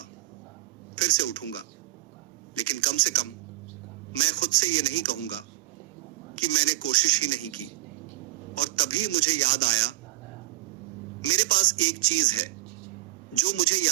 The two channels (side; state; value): left; quieter; 18.0 dB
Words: फिर से उठूंगा, लेकिन कम से कम मैं खुद से ये नहीं कहूंगा कि मैंने कोशिश ही नहीं की। और तभी मुझे याद आया, मेरे पास एक चीज है जो मुझे